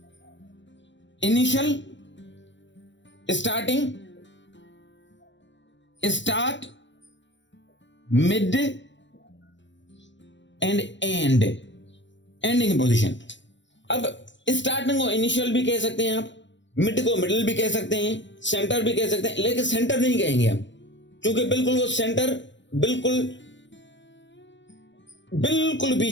initial, starting, start, mid and ending position. अब स्टार्टिंग को इनिशियल भी कह सकते हैं आप, मिड को मिडिल भी कह सकते हैं, सेंटर भी कह सकते हैं, लेकिन सेंटर नहीं कहेंगे हम, क्योंकि बिल्कुल वो सेंटर बिल्कुल बिल्कुल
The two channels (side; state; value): right; late; 0.53 ms